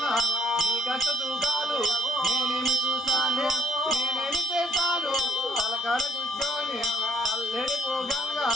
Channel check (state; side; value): normal; both; correlation 0.63